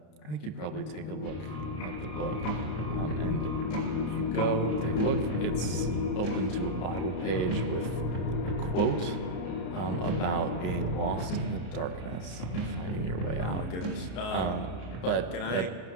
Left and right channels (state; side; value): late; right; 33 ms